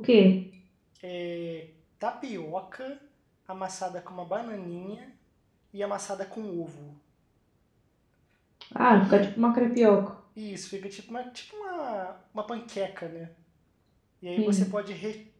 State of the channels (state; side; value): identical; both; correlation 1.00